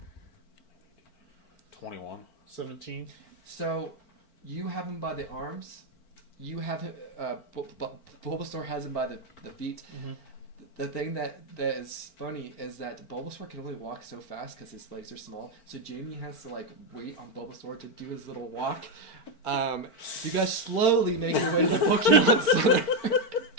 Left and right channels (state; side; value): late; right; 4.5 ms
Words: 21. 17. So you have him by the arms. You have him. Bulbasaur has him by the feet. Mhm. The thing that is funny is that Bulbasaur can only walk so fast because his legs are small. So Jamie has to like wait on Bulbasaur to do his little walk. You guys slowly make your way to the Pokemon Center.